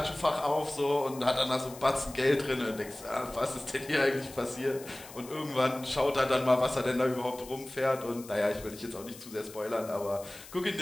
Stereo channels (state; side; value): noise; left; hiss, 17 dB below the sound